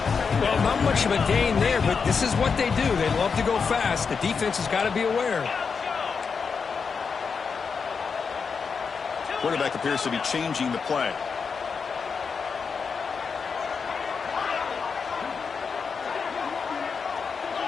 Well, not much of a gain there, but this is what they do. They love to go fast. The defense has got to be aware. Quarterback appears to be changing the play.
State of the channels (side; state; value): right; quieter; 5.6 dB